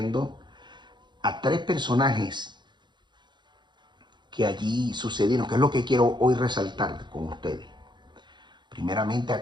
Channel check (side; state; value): left; late; 0.22 ms